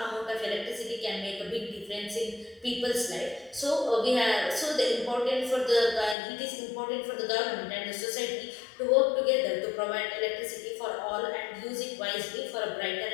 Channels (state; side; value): drops out; right; at 6.2 s